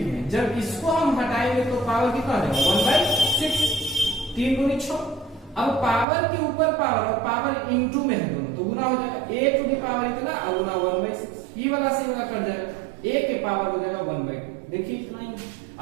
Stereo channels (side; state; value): left; drops out; at 6.1 s